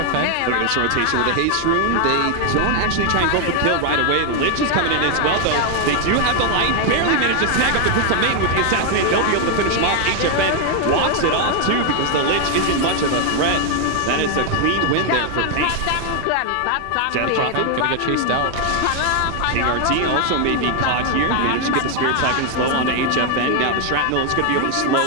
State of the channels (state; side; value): different; both; correlation 0.00